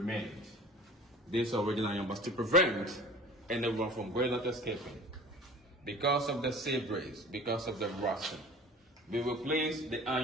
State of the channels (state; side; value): normal; both; correlation 0.42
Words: These are original iron bars to prevent anyone from going out escaping. Because of the sea breeze, because of the rusting, we replaced the